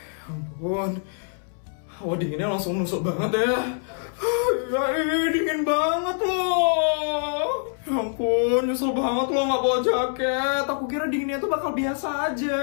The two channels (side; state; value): right; silent; 62 dB below the other